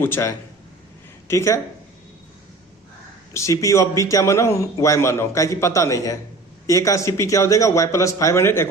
है, ठीक है। CP of B क्या माना हूं Y माना हूं, क्या कि पता नहीं है। ए का सीपी क्या हो जाएगा Y plus 500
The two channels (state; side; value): quieter; left; 3.1 dB